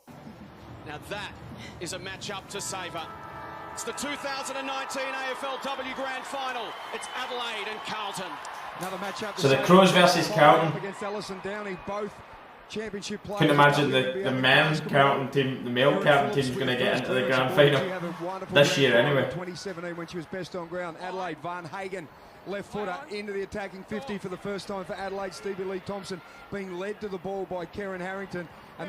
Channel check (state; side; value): identical; both; correlation 1.00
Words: Now that is a match-up to savour. It's the 2019 AFLW Grand Final. It's Adelaide and Carlton. Another match-up. So the Crows versus Carlton. Against Ellison Downey, both championship players. Couldn't imagine the men's Carlton team, the male Carlton team, is going to get into the Grand Final this year anyway. 2017 when she was best on ground. Adelaide, Van Hagen, left footer into the attacking 50 for the first time for Adelaide. Stevie Lee Thompson being led to the ball by Karen Harrington,